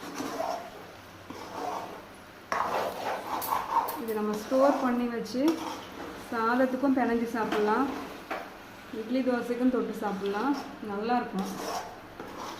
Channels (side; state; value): both; identical; correlation 1.00